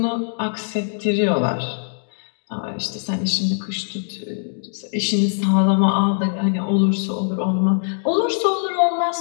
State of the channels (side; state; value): right; silent; digital silence